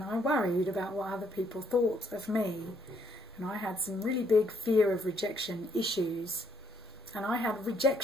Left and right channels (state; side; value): normal; both; correlation 0.70